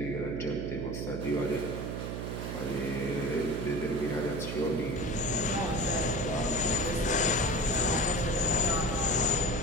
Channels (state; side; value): noise; right; hum, 4 dB below the sound